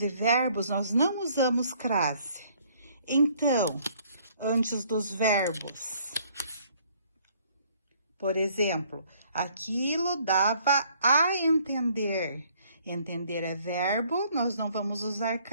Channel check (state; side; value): inverted; both; correlation -0.62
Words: verbos nós não usamos crase. Então, antes dos verbos, por exemplo, aquilo dava a entender. Entender é verbo, nós não vamos usar